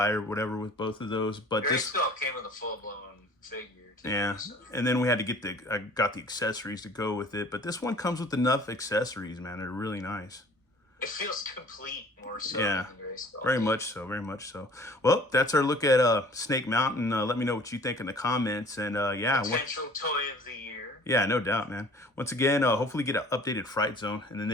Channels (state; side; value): normal; both; correlation 0.50